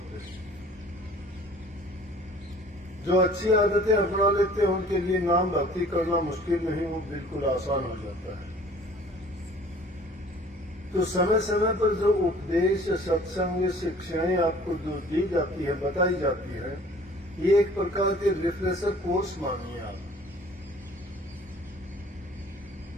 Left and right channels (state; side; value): normal; both; correlation 0.50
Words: जो अच्छी आदतें अपना लेते हैं, उनके लिए नाम भक्ति करना मुश्किल नहीं, वो बिल्कुल आसान हो जाता है। तो समय समय पर जो उपदेश, सत्संग, शिक्षाएं आपको जो दी जाती है, बताई जाती है, ये एक प्रकार के रिफ्रेशर कोर्स मानिए आप।